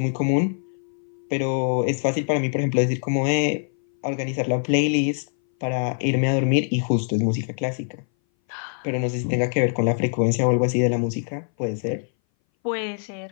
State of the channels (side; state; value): right; silent; 60 dB below the other